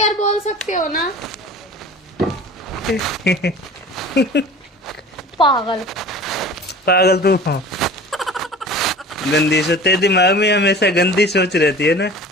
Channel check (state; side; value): normal; both; correlation 0.41